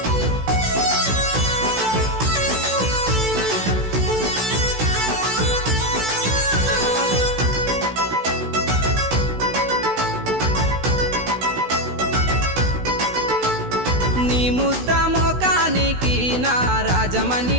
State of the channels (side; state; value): left; late; 16 ms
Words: నీ ముద్ద మోకానికి నా రాజమణి